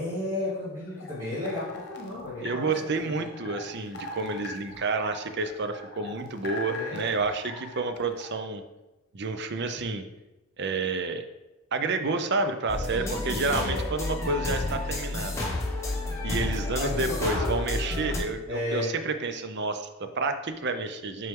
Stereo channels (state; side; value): normal; both; correlation 0.15